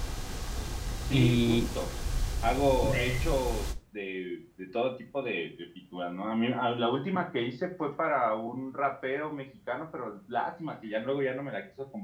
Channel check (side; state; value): both; identical; correlation 1.00